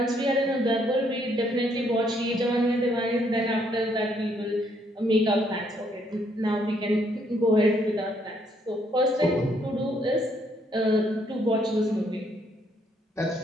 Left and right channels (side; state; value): both; normal; correlation 0.70